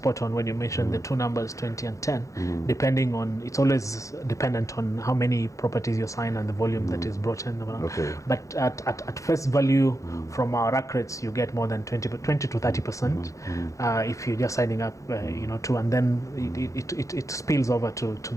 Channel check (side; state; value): right; late; 0.15 ms